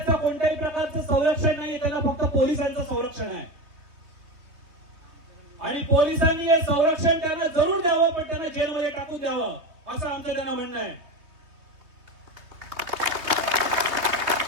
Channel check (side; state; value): left; late; 3.2 ms